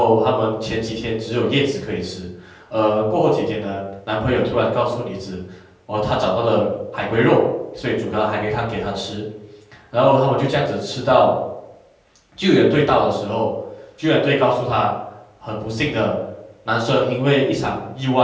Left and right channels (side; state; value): both; identical; correlation 1.00